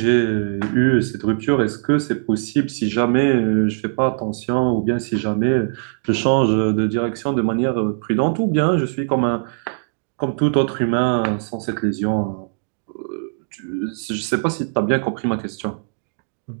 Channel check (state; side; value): silent; left; digital silence